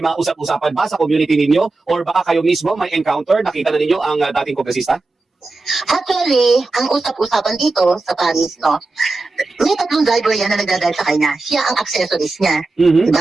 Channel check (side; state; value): left; quieter; 3.4 dB